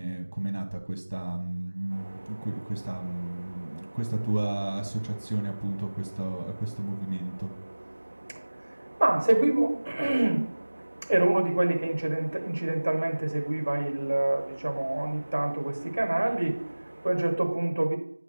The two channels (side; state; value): both; inverted; correlation -1.00